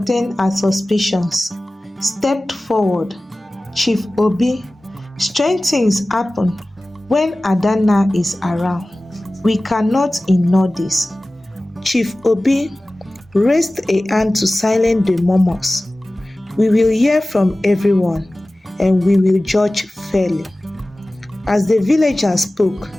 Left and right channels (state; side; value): normal; both; correlation 0.97